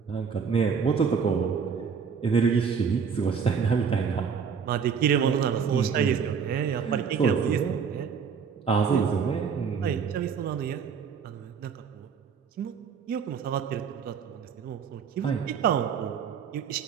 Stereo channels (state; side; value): quieter; left; 6.4 dB